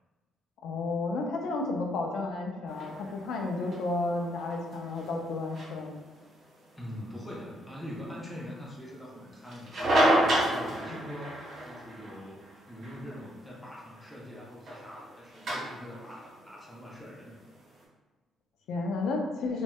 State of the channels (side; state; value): both; normal; correlation 0.73